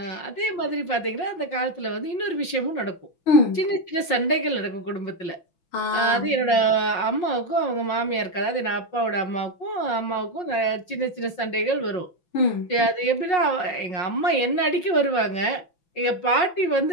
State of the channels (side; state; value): right; late; 5.5 ms